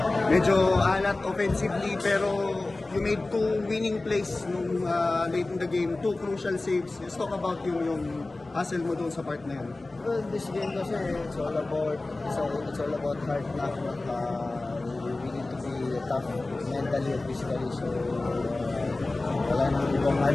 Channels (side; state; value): right; quieter; 3.1 dB